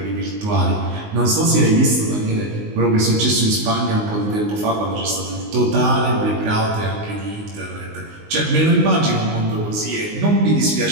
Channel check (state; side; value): late; left; 19 ms